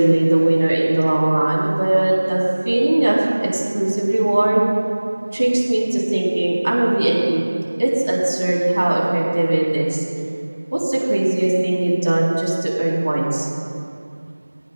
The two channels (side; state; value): both; inverted; correlation -1.00